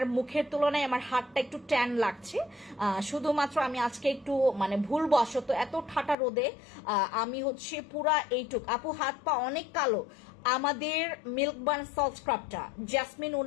মুখের তুলনায় আমার হাতটা একটু ট্যান লাগছে, শুধুমাত্র আমি আজকে একটু মানে ভুলবশত এত ঠাটা রোদে আমি হচ্ছে পুরা এইটুক, আপু হাত পা অনেক কালো। আমাদের মিল্ক বার্ন সল্ট স্ক্রাবটা, জাসমিন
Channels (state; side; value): drops out; right; at 6.2 s